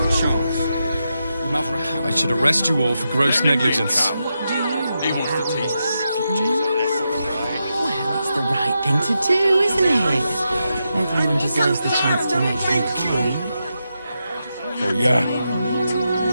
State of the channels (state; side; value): inverted; both; correlation -0.86